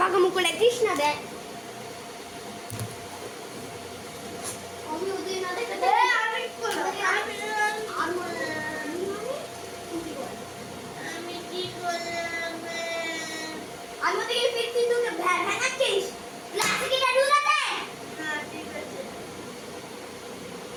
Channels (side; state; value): both; identical; correlation 1.00